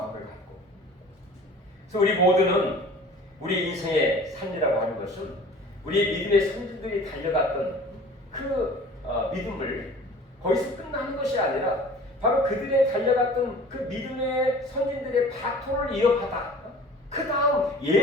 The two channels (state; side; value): normal; both; correlation 0.45